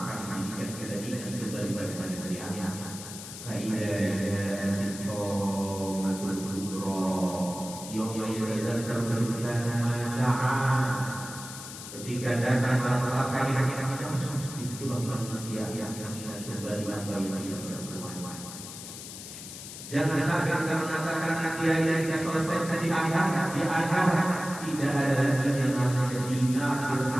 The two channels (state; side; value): noise; left; hiss, 11 dB below the sound